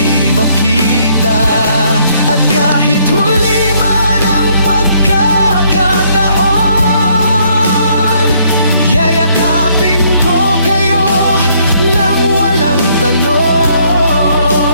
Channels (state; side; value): inverted; both; correlation -0.67